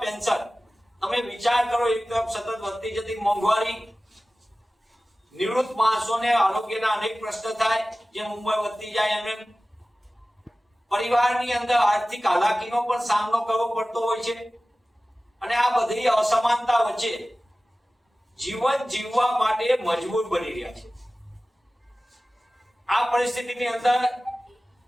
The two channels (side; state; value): both; normal; correlation 0.97